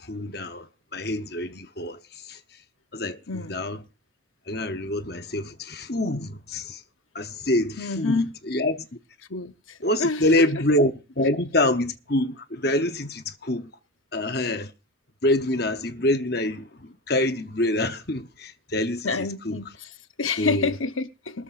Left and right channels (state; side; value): normal; both; correlation 0.24